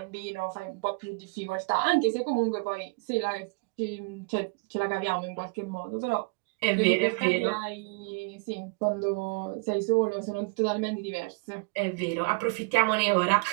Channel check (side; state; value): left; quieter; 33.4 dB